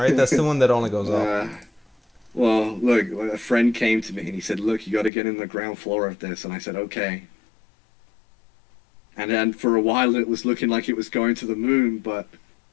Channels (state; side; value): drops out; right; at 5.1 s